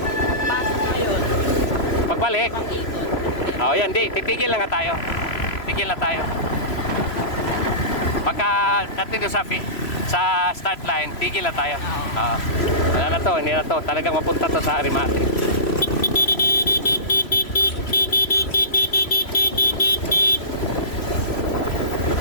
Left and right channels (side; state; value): right; late; 3.0 ms